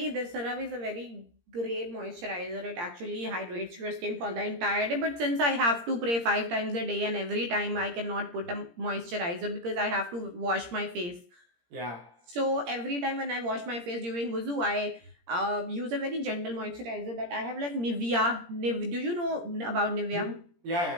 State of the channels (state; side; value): late; left; 17 ms